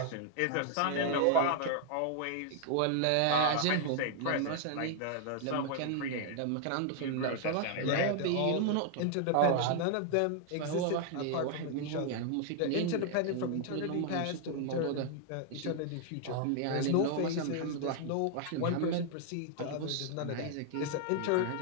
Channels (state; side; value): different; both; correlation 0.00